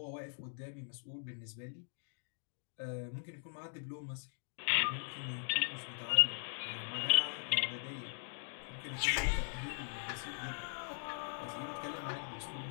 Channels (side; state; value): right; silent; digital silence